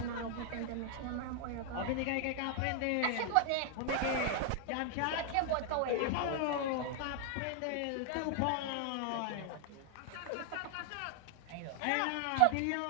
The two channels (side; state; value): both; different; correlation 0.00